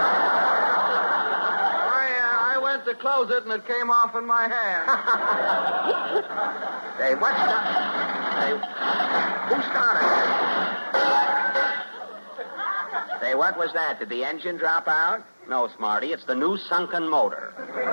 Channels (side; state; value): both; inverted; correlation -1.00